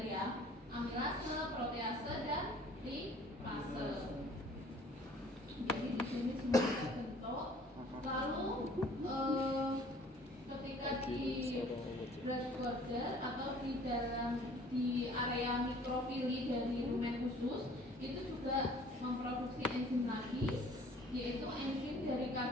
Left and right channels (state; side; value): normal; both; correlation 0.53